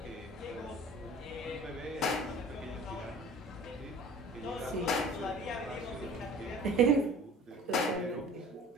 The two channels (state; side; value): normal; both; correlation 0.45